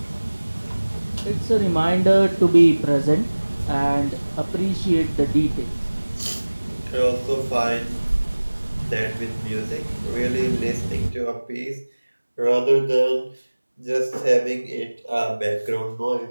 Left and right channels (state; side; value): inverted; both; correlation -1.00